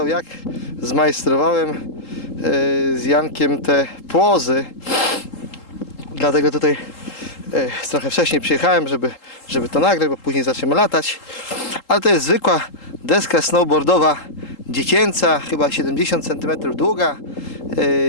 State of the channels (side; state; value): right; late; 3.8 ms